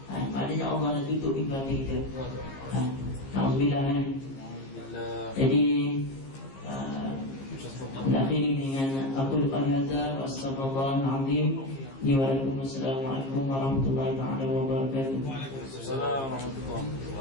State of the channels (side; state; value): right; late; 15 ms